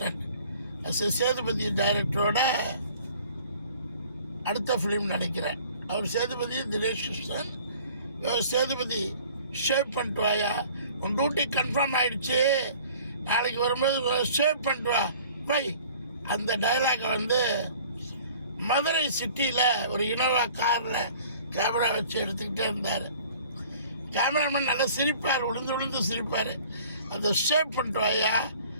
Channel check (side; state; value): both; inverted; correlation -0.51